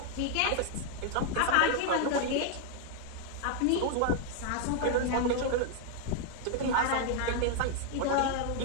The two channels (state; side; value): different; both; correlation 0.00